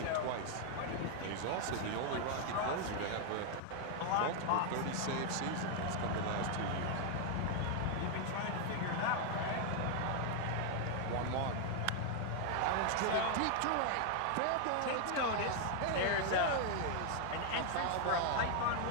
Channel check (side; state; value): both; different; correlation 0.00